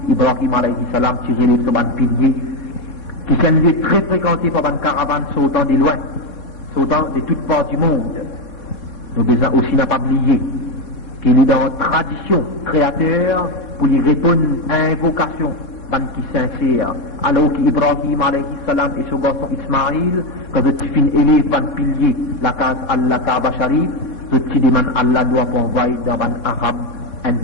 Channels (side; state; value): right; late; 4.2 ms